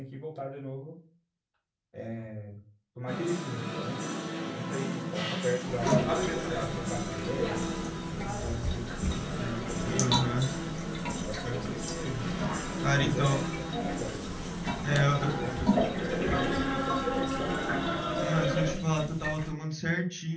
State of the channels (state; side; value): identical; both; correlation 1.00